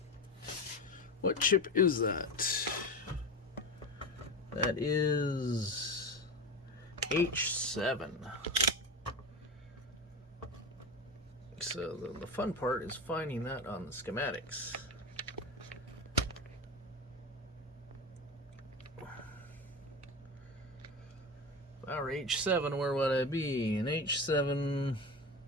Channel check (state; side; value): normal; both; correlation 0.24